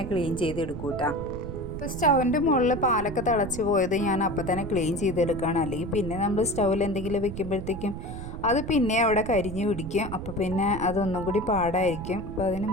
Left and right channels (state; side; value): noise; right; rumble, 8 dB below the sound